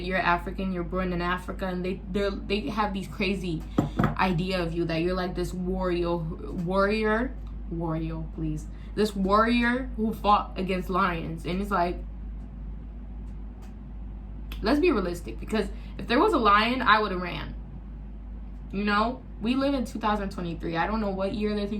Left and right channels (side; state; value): both; identical; correlation 1.00